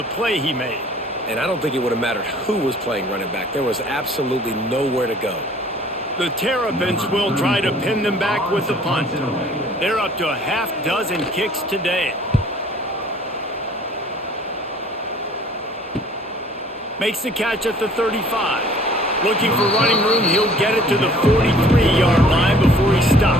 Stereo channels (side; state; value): both; normal; correlation 0.54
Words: play he made. And I don't think it would have mattered who was playing running back. There was absolutely nowhere to go. The Terrapins will try to pin them back with the punt. They're up to a half-dozen kicks today. Makes the catch at the 35. Looking for running room, he'll get it to the 43-yard line before he